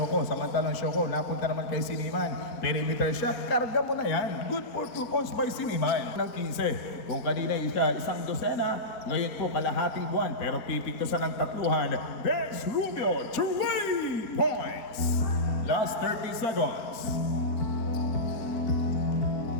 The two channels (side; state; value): right; late; 4.4 ms